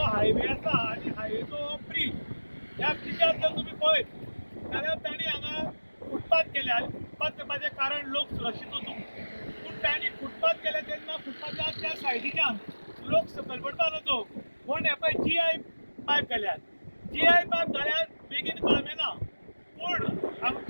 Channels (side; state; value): both; inverted; correlation -1.00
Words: हायवे आसा आनी हायवेचो ब्रीज ह्या ब्रिजार जर तुमी पळयत जाल्यार तांणी हांगा फुटपाथ केले आनी फुटपाथ करपाचें कारण लोक सुरक्षीत वचूंक. पूण तांणी फुटपाथ केले तेन्ना फुटपाथाच्या त्या सायडीच्यान लोक सकयल पडपा नजो म्हूण हे पळय GI पायप घाल्यात. GI पायप घाल्यात बेगीन कळमें ना. पूण